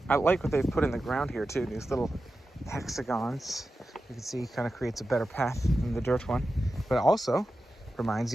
I like what they've put in the ground here too, these little hexagons. You can see kind of creates a better path than the dirt one, but also reminds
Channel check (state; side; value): normal; both; correlation 0.92